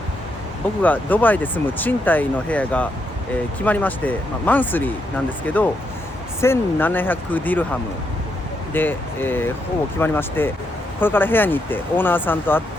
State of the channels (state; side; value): normal; both; correlation 0.79